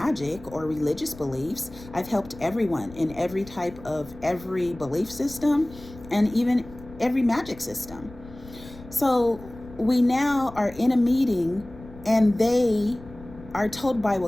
or religious beliefs. I've helped everyone in every type of every belief system, and even every magic system. So we now are in a meeting, and they are told by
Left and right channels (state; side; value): noise; left; rumble, 18 dB below the sound